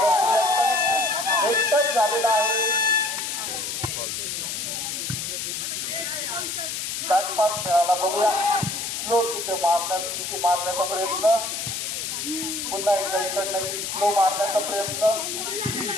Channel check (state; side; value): noise; left; hiss, 4 dB below the sound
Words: एकटच झालेला आहे. बॅकपास मिळाला बघूया. स्लो तिथे मारण्याचा प्रयत्न. पुन्हा एकदा इकडनं स्लो मारण्याचा प्रयत्न.